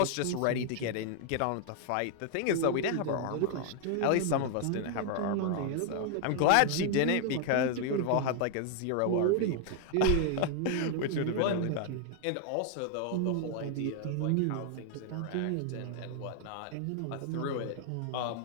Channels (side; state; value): both; different; correlation 0.00